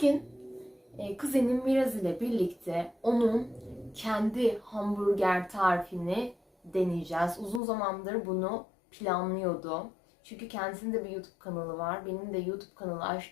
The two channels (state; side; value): drops out; right; at 7.6 s